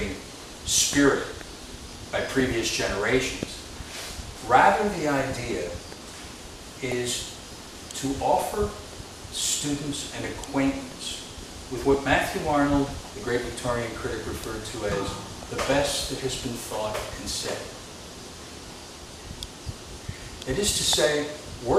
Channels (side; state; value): both; identical; correlation 1.00